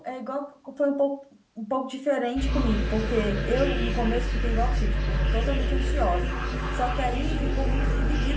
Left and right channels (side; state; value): both; identical; correlation 1.00